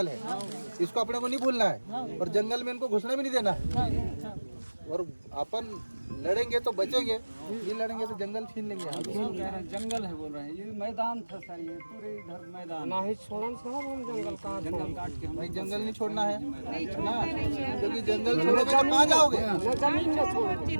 है, इसको अपने को नहीं भूलना है। और जंगल में इनको घुसने भी नहीं देना। और अपन लड़ेंगे तो बचेंगे, ये लड़ेंगे तो जंगल छीन लेंगे। जंगल है बोल रहे हैं, ये मैदान था सर, ये पूरे इधर मैदान नहीं छोड़न साहब, हम जंगल कहाँ जंगल काट के हम भाई जंगल नहीं छोड़ना है ना, क्योंकि जंगल छोड़ोगे तो कहाँ जाओगे? जमीन न छोड़,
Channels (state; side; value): inverted; both; correlation -1.00